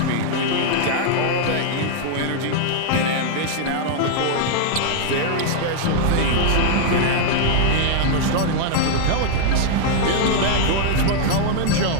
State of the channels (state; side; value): different; both; correlation -0.01